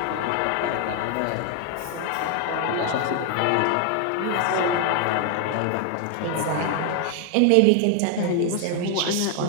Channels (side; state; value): both; different; correlation 0.00